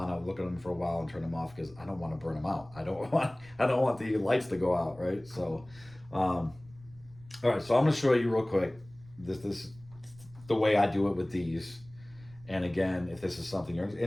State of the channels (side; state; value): right; noise; rumble, 23 dB below the sound